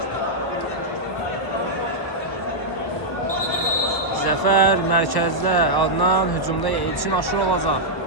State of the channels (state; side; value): late; right; 1.1 ms